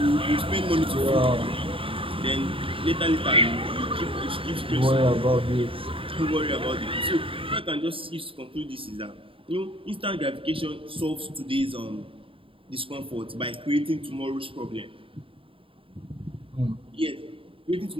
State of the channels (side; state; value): left; late; 0.26 ms